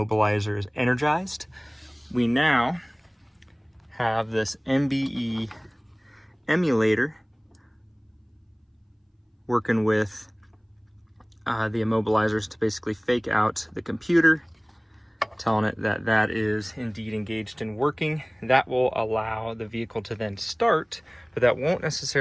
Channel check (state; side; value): identical; both; correlation 1.00